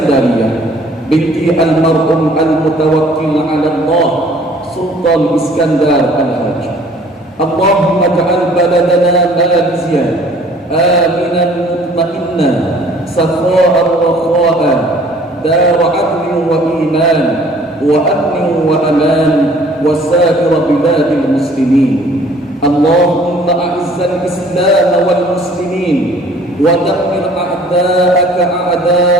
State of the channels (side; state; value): both; normal; correlation 0.55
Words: binti almarhum al-mutawakkil ala Allah Sultan Iskandar al-Hajj. Allahumma ja'al baladana Malaysia aminan mutma'inna sakha'an wa kha'an dar 'adlin wa iman wa amnin wa aman wa sa'ir biladil muslimin. Allahumma a'izzal islam wal muslimin wa dammir a'da'aka